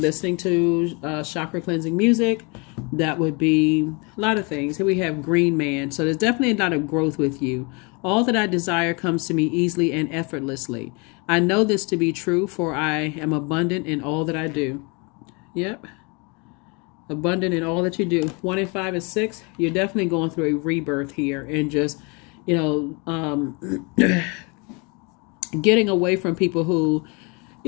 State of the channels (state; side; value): quieter; right; 30.6 dB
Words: to chakra cleansing music. That would be a lot of things. Here we have Green Man. So there's definitely a lot of growth with you. All that I desire comes to me easily and effortlessly. I know this to be true, for I am abundant in all that I do. Yep. Abundant in all that you do. 1 and 5 and 6. You're definitely going through a rebirth here. And just, you know, getting away from people who,